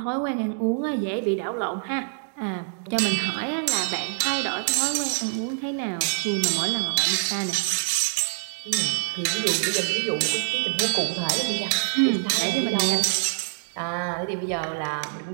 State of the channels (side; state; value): left; silent; digital silence